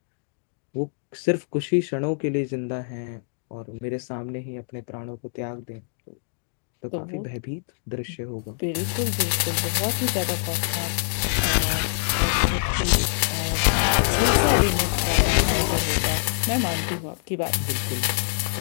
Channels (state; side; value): silent; right; digital silence